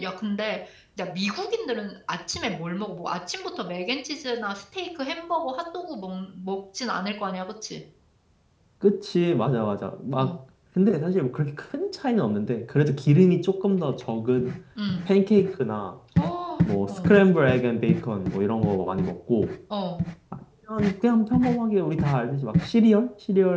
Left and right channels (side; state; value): both; identical; correlation 1.00